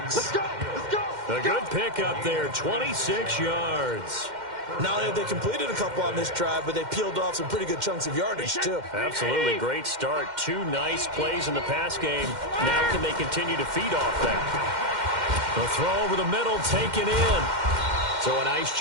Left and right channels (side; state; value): left; late; 2.1 ms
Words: Let's go. A good pickup there, 26 yards. Not only have they completed a couple on this drive, but they peeled off some pretty good chunks of yardage, too. Absolutely great start. 2 nice plays in the pass game. Now can they continue to feed off that? The throw over the middle, taken in. So a nice